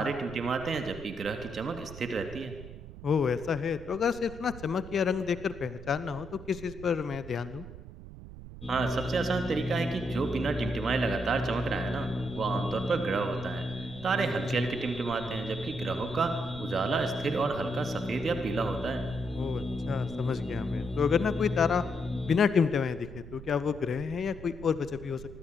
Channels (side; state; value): right; noise; rumble, 14 dB below the sound